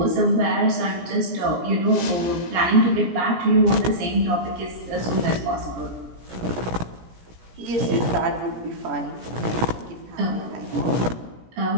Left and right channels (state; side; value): late; left; 17 ms